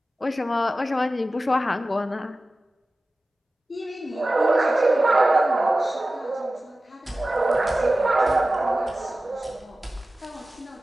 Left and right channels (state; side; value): normal; both; correlation 0.95